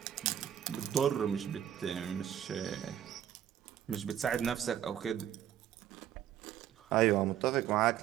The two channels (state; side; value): quieter; left; 10.6 dB